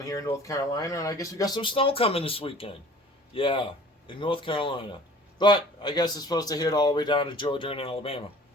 in North Carolina, and I guess we got some snow coming this weekend. Yeah, in North Carolina. But I guess it's supposed to hit all the way down to Georgia and Alabama.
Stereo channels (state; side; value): normal; both; correlation 0.48